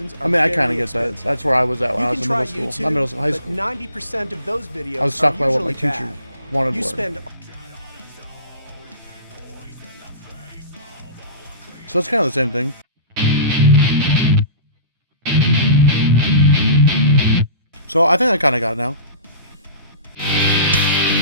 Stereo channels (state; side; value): inverted; both; correlation -0.39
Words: are I kind of get that. That's where I was at when I was in middle school. YouTube, Not middle school, high school. But 90% of those videos I was stuck are by what my usually teacher bad. wanted You to learn. So it's kind of the same thing. So I think I kind of got it now.